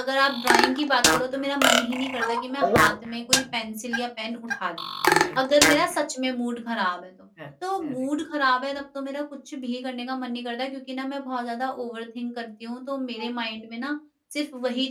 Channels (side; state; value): both; identical; correlation 1.00